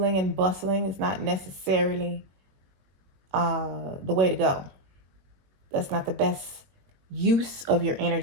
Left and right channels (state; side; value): late; left; 21 ms